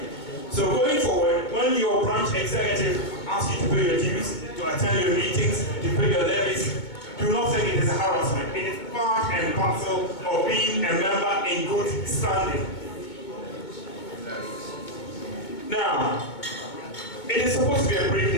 So going forward, when your branch executive asks you to pay your dues, to attend your meetings, to pay your levies, do not think it is a harassment. It is part and parcel of being a member in good standing. Now, it is supposed to be a brief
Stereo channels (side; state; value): right; late; 2.2 ms